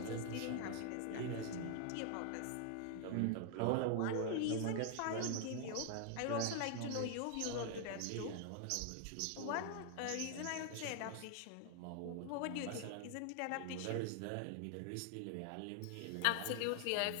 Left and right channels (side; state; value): both; different; correlation 0.00